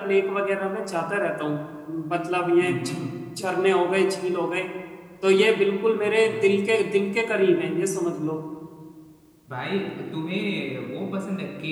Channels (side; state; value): both; identical; correlation 1.00